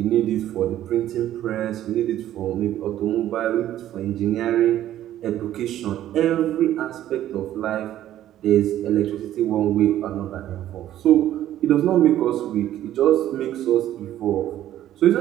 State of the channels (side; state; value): left; quieter; 12.5 dB